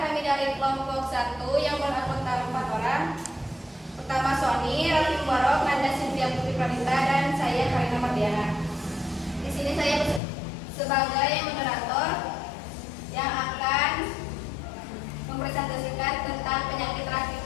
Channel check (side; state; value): right; drops out; at 10.2 s